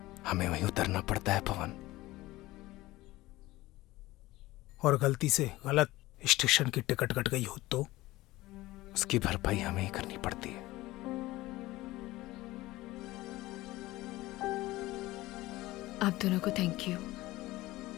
हमें वहीं उतरना पड़ता है पवन। और गलती से गलत स्टेशन की टिकट कट गई हो तो उसकी भरपाई हमें ही करनी पड़ती है। आप दोनों को थैंक यू।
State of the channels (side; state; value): right; quieter; 18.2 dB